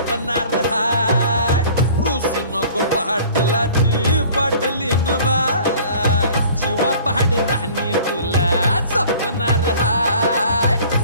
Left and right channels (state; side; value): inverted; both; correlation -0.48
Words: हाय रुसू नको पाटलाची पाटलीन बाय जीवा पहाड राणी तुला जपणार हाय